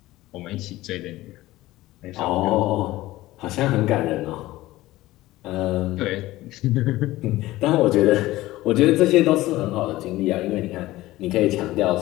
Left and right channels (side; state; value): right; quieter; 17.2 dB